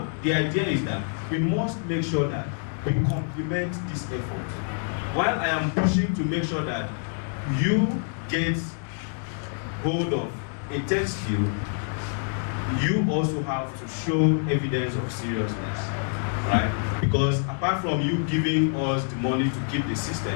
the idea is that we must make sure that we complement this effort. While I am pushing to make sure that you get hold of a tech skill, you also have to show evidence of seriousness, right? Because apart from you giving us the money to keep the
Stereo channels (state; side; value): silent; right; 61 dB below the other